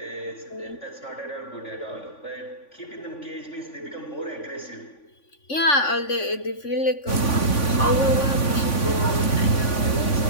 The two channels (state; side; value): late; right; 3.5 ms